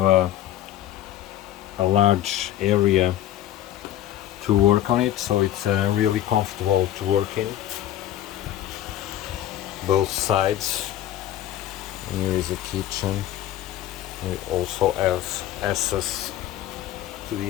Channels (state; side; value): quieter; right; 12.5 dB